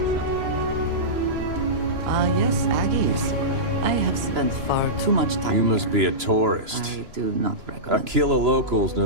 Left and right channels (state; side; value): late; left; 3.0 ms